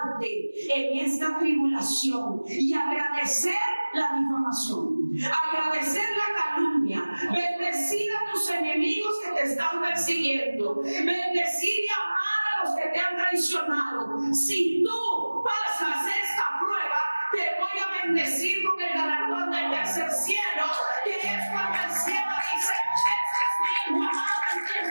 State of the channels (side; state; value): both; inverted; correlation -1.00